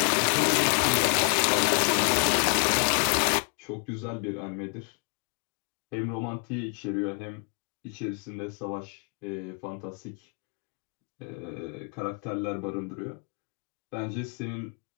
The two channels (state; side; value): quieter; right; 38.8 dB